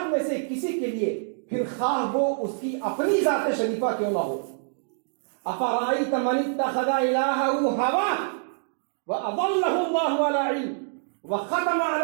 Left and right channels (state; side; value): silent; left; digital silence